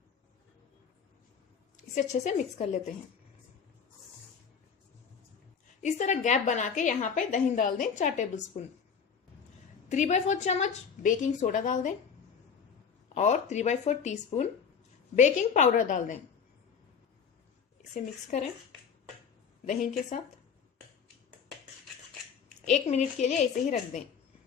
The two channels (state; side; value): quieter; right; 6.6 dB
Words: इसे अच्छे से मिक्स कर लेते हैं। इस तरह गैप बना के यहाँ पे दही डाल दें 4 टेबलस्पून। 3/4 चम्मच बेकिंग सोडा डाल दें और 3/4 टीस्पून बेकिंग पाउडर डाल दें। इसे मिक्स करें दही के साथ। 1 मिनट के लिए ऐसे ही रख दें।